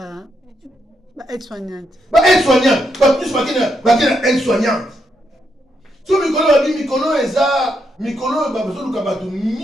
aide-soignante. Aide-soignante. Bato so ba kena aide-soignante. So mikolo babi mikolo eza mikolo ba besoin luka bato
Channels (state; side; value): normal; both; correlation 0.80